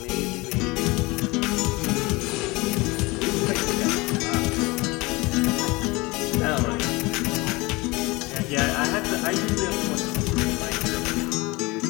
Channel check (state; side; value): quieter; right; 23.4 dB